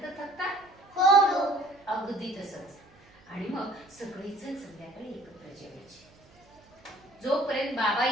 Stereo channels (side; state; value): right; noise; hum, 29 dB below the sound